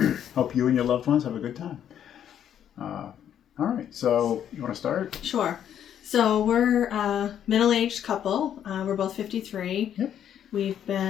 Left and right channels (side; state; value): right; quieter; 9.7 dB